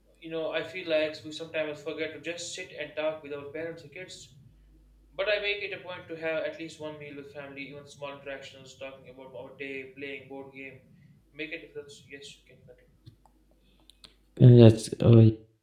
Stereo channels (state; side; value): identical; both; correlation 1.00